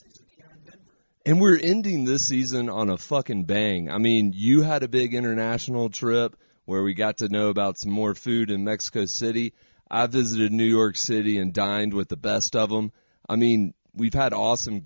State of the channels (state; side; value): inverted; both; correlation -1.00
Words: here in Denver. And we're ending this season on a fucking bang. I mean, you had a big international trip where we got to know about some more food in Mexico City. I visited New York City and dined with the best of them. I mean, we've had awesome